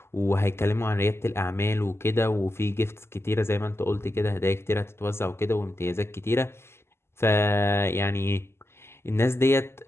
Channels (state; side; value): late; right; 0.12 ms